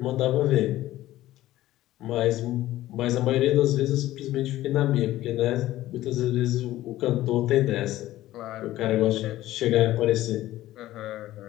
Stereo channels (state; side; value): quieter; right; 15.1 dB